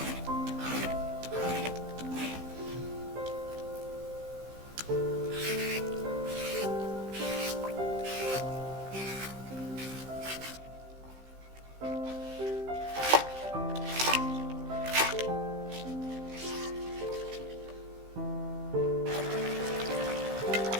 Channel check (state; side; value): late; left; 15 ms